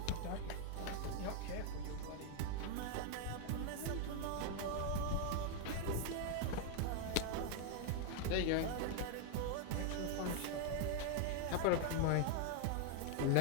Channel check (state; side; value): different; both; correlation 0.00